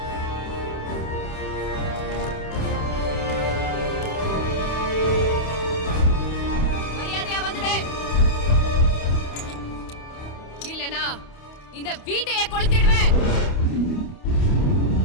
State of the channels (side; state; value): right; late; 28 ms